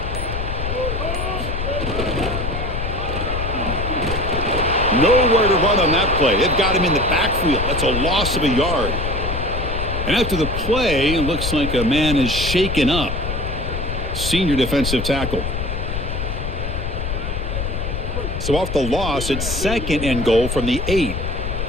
Nowhere to run on that play. They've got him in the backfield. That's a loss of a yard. And after the play, it looks like a man is shaken up. Senior defensive tackle. So off the loss, it's 2nd and goal from the 8.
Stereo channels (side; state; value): left; noise; rumble, 4 dB below the sound